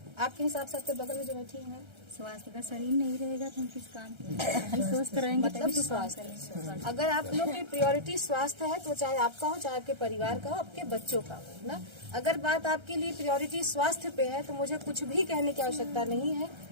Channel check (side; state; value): left; late; 1.3 ms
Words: आपके हिसाब से? आपके बगल में जो बैठी है, स्वास्थ्य का शरीर नहीं रहेगा तो हम किस काम के स्वस्थ रहेंगे? मतलब स्वास्थ्य, अगर आप लोग की प्रायोरिटी स्वास्थ्य है तो चाहे आपका हो, चाहे आपके परिवार का हो, आपके बच्चों का हो ना। अगर बात आपके लिए प्रायोरिटी स्वास्थ्य पे है तो मुझे कुछ भी कहने की आवश्यकता नहीं है।